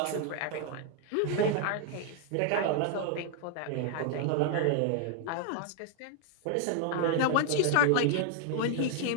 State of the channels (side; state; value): both; different; correlation 0.00